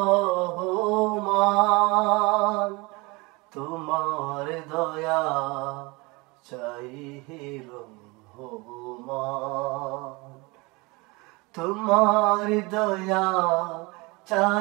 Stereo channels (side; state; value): left; quieter; 25.7 dB